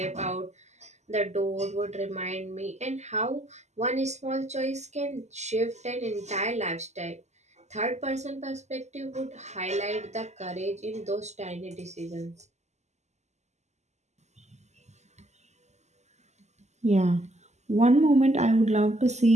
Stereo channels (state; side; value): late; left; 0.33 ms